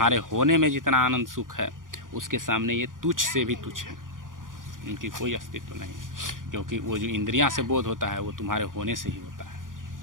होने में जितना आनंद सुख है, उसके सामने ये तुच्छ से भी तुच्छ है, इनकी कोई अस्तित्व नहीं है। क्योंकि वो जो इंद्रियां से बोध होता है वो तुम्हारे होने से ही होता है,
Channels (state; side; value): late; left; 0.89 ms